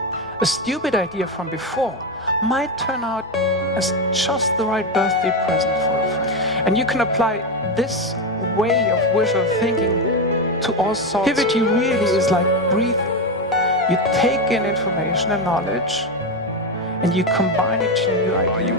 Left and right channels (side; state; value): both; normal; correlation 0.12